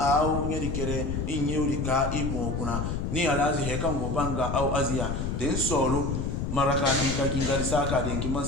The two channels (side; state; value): left; noise; rumble, 2 dB below the sound